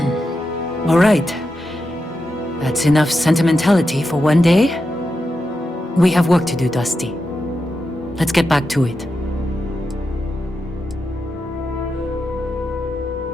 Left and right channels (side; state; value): both; normal; correlation 0.88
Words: All right. That's enough sentimentality for one day. We have work to do, Dusty. Let's get back to it.